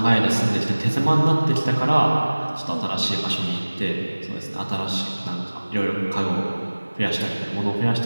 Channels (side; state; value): both; inverted; correlation -1.00